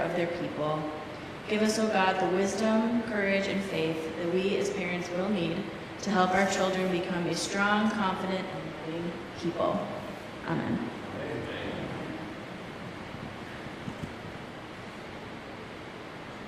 of their people. Give us, O God, the wisdom, courage, and faith that we as parents will need to help our children become a strong, confident, and loving people. Amen.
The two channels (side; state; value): both; identical; correlation 1.00